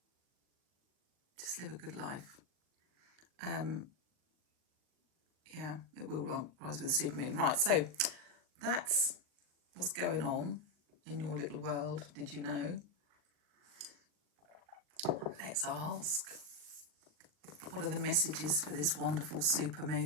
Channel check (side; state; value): left; late; 39 ms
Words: Just live a good life. Yeah, it will rise with the supermoon. Right, so that's what's going on in your little world. Did you know? Let's ask, what are the messages for this wonderful